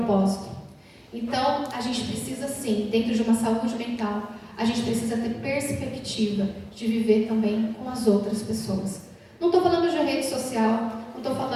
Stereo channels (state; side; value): identical; both; correlation 1.00